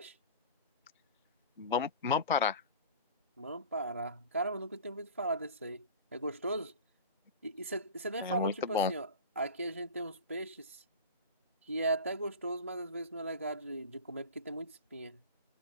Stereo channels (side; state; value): both; inverted; correlation -0.33